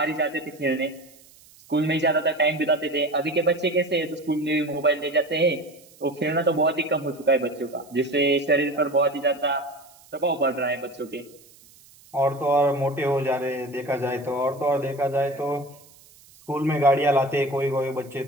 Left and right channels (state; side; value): noise; right; hiss, 26 dB below the sound